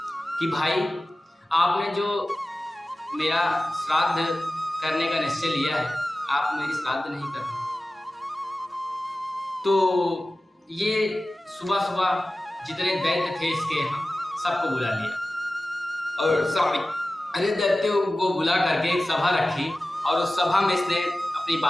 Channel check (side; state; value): both; normal; correlation 0.96